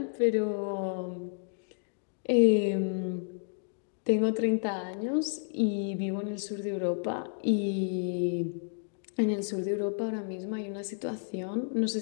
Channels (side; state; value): right; silent; digital silence